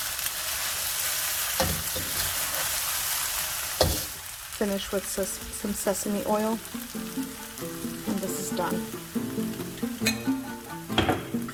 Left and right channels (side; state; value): both; identical; correlation 1.00